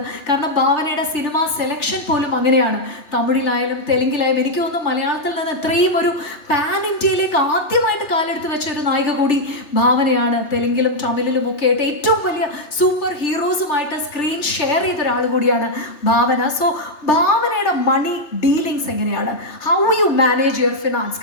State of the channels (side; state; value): right; late; 3.4 ms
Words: കാരണം ഭാവനയുടെ സിനിമ സെലക്ഷൻ പോലും അങ്ങനെയാണ്. തമിഴിലായാലും തെലുങ്കിലായാലും എനിക്ക് തോന്നുന്നു മലയാളത്തിൽ നിന്ന് ഇത്രയും ഒരു പാൻ ഇന്ത്യയിലേക്ക് ആദ്യമായിട്ട് കാലെടുത്ത് വെച്ച ഒരു നായിക കൂടി ഭാവനയാണ്. തെലുങ്കിലും തമിഴിലും ഒക്കെ ആയിട്ട് ഏറ്റവും വലിയ സൂപ്പർ ഹീറോസുമായിട്ട് സ്ക്രീൻ ഷെയർ ചെയ്ത ഒരാൾ കൂടിയാണ് ഭാവന. സോ ഭാവനയുടെ മണി ഡീലിങ്സ് എങ്ങനെയാണ്? How you manage your finance?